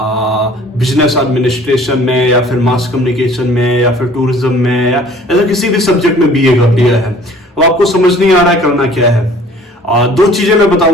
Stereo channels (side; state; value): both; normal; correlation 0.51